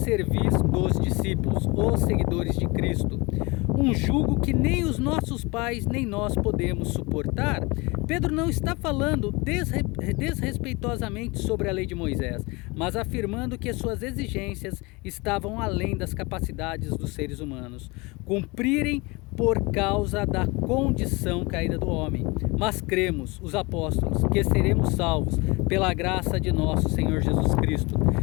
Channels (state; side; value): quieter; right; 25.7 dB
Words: dos discípulos, os seguidores de Cristo, um jugo que nem os nossos pais nem nós podemos suportar. Pedro não está falando desrespeitosamente sobre a lei de Moisés, mas afirmando que suas exigências estavam além das capacidades dos seres humanos cumprirem por causa da condição caída do homem. Mas cremos, os apóstolos, que seremos salvos pela graça de nosso Senhor Jesus Cristo,